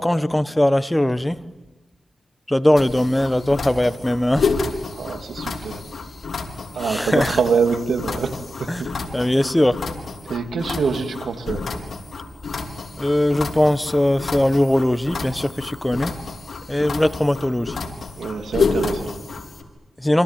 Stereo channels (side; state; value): both; normal; correlation 0.94